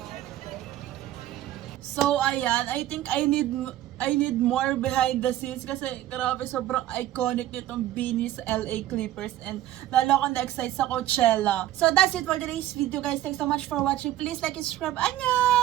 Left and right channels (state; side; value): quieter; left; 13.6 dB